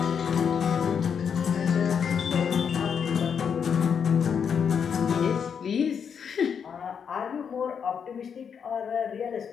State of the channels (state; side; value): quieter; right; 7.1 dB